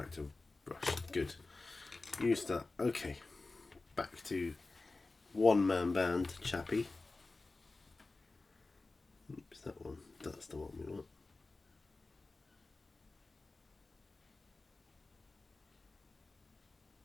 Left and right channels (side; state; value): right; quieter; 3.4 dB